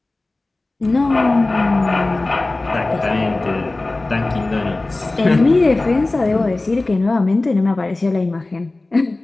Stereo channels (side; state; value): right; quieter; 3.0 dB